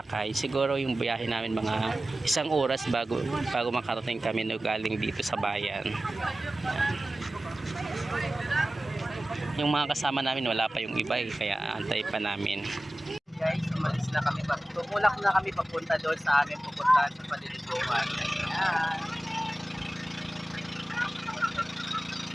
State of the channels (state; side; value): normal; both; correlation 0.96